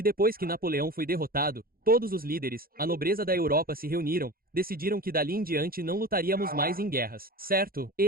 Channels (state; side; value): late; left; 0.43 ms